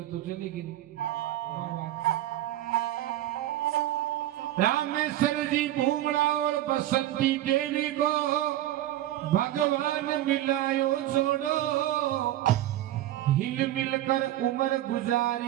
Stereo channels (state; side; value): quieter; left; 13.8 dB